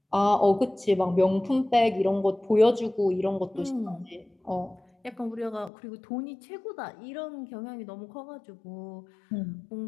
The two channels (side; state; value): right; drops out; at 5.7 s